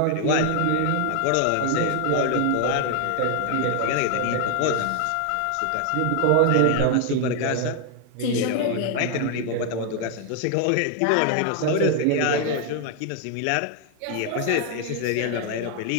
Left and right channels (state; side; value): different; both; correlation 0.00